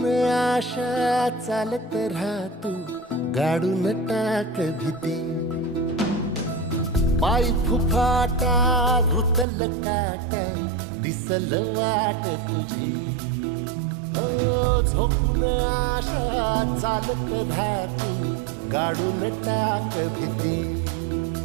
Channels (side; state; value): left; drops out; at 9.5 s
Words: आशा चालत राहतू गाडून टाक भीती पाय फुफाटा रुतल काटा दिसल वाट तुझी हो झोकून आशा चालत राहतू गाडून टाक भीती